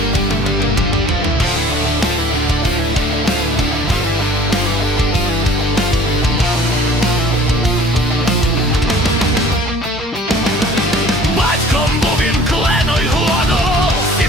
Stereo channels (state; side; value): normal; both; correlation 0.50